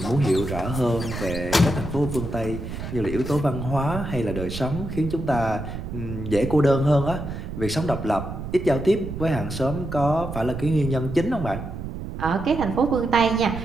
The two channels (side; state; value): right; noise; rumble, 8 dB below the sound